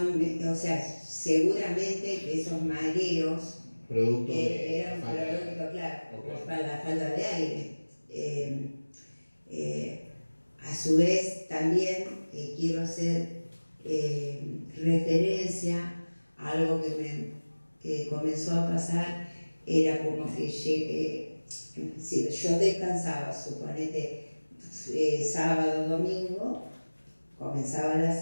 o sea, seguramente que esos mareos eran producto, claro, por la falta de aire. A su vez, también quiero hacer referencia a algo que comenzó a pasar, era como que si yo descansaba, suponete, sábado, domingo, comenzaba la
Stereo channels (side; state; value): both; inverted; correlation -1.00